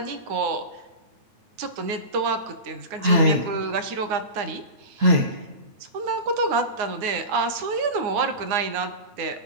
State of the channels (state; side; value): late; left; 9.6 ms